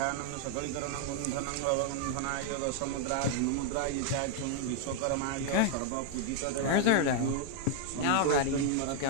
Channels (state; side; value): different; both; correlation 0.00